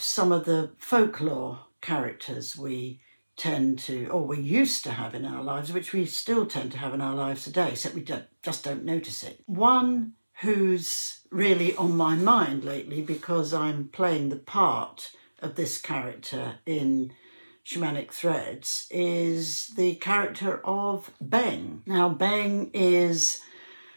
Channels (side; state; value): both; inverted; correlation -1.00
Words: of the folklore characters we tend to, or we used to have in our lives, which we still tend to have in our lives today, except we just don't notice it. One who's really on my mind lately, because I'm playing the part of this character in Shamanic Threads, is the character of Beng. Now, Beng is